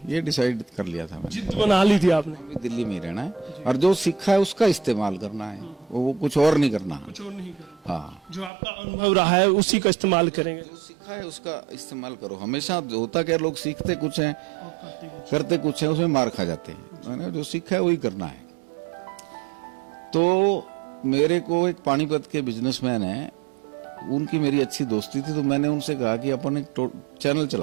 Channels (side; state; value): left; drops out; at 8.5 s